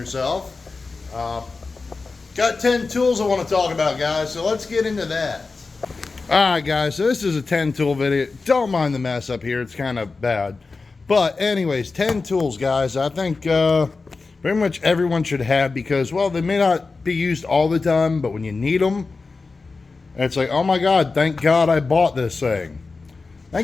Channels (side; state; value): right; quieter; 4.1 dB